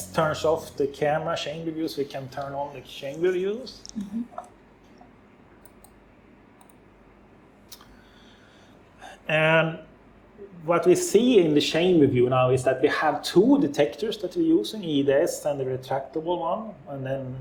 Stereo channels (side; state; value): both; identical; correlation 1.00